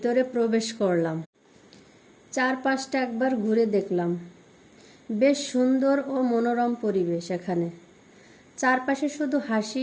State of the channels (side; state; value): both; identical; correlation 1.00